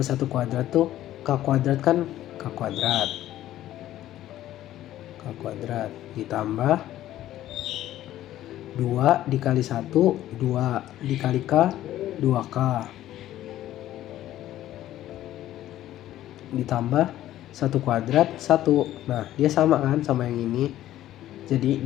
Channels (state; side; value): quieter; right; 13.4 dB